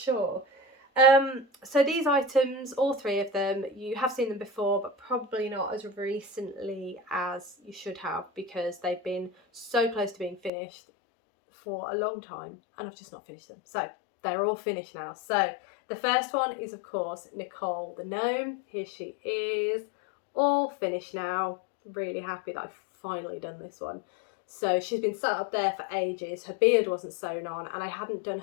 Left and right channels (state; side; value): drops out; right; at 10.5 s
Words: So these items, all 3 of them, you have seen them before, but probably not as recently as you should have, because they've been so close to being finished for a long time and I've just not finished them. So they're all finished now. So the first one is, of course, Gnicole the Gnome. Here she is, all finished now. Really happy that I've finally done this one. So she's been sat up there for ages. Her beard wasn't sewn on and I hadn't done